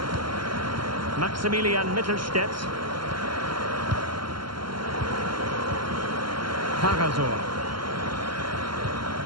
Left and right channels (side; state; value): left; late; 0.72 ms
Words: Maximilian Mittelstädt. Karasor.